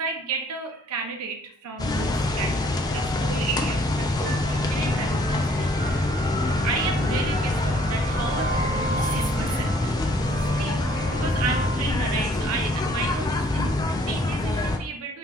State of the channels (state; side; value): normal; both; correlation 0.61